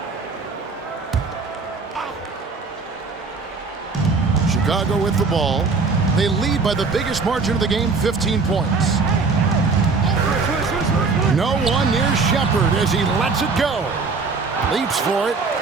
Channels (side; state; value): left; quieter; 4.4 dB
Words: Chicago with the ball. They lead by the biggest margin of the game, 15 points. No one near Shepard as he lets it go. Leaps for it.